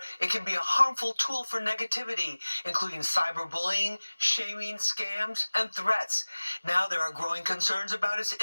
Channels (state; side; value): inverted; both; correlation -1.00